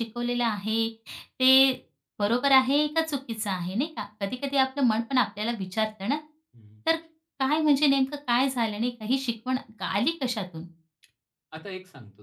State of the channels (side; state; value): both; identical; correlation 1.00